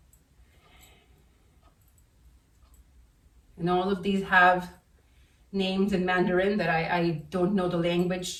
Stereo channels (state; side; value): identical; both; correlation 1.00